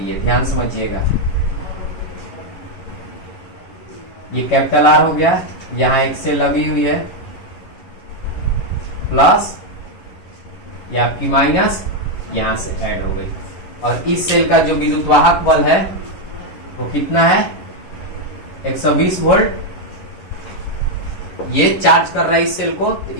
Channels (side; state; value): right; late; 11 ms